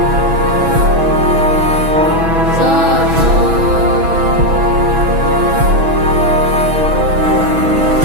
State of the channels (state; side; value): late; left; 6.1 ms